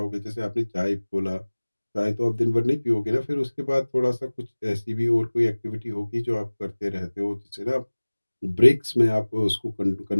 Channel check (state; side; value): inverted; both; correlation -1.00